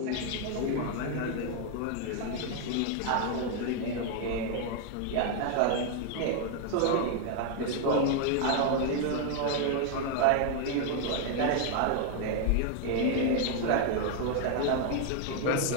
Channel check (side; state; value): both; different; correlation 0.00